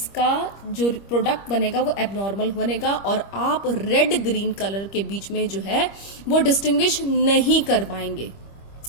जो प्रोडक्ट बनेगा वो एबनॉर्मल बनेगा, और आप रेड ग्रीन कलर के बीच में जो है वो डिस्टिंग्विश नहीं कर पाएंगे।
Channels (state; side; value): late; right; 25 ms